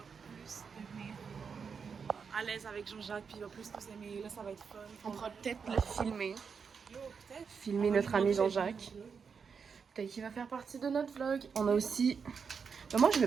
plus devenir à l'aise avec Jean-Jacques, puis il va plus nous aimer. Là, ça va être fun. On pourra peut-être le filmer. Yo, peut-être. Filmer notre ami Jean-Jacques. Peut-être qu'il va faire partie de notre vlog. On a aussi... Mais moi, je mets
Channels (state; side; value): quieter; left; 6.0 dB